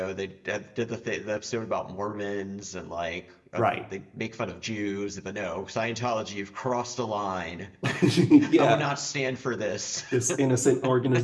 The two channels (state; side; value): identical; both; correlation 1.00